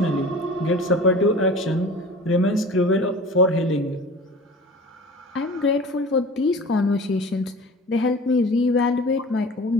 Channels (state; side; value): normal; both; correlation 0.40